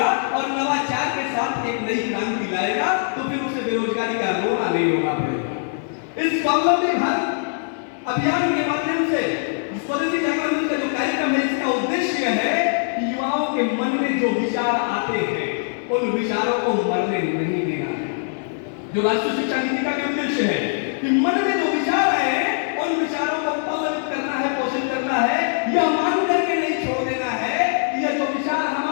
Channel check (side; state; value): right; silent; digital silence